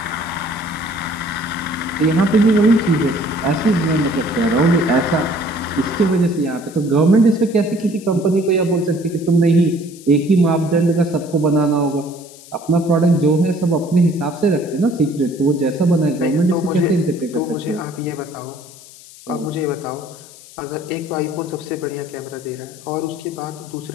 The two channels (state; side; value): noise; left; hiss, 20 dB below the sound